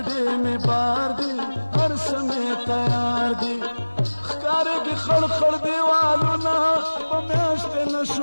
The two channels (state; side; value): inverted; both; correlation -1.00